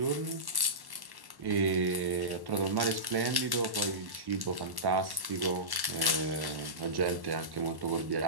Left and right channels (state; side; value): late; left; 1.1 ms